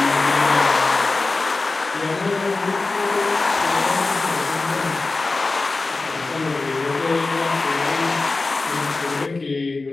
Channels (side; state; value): right; quieter; 3.6 dB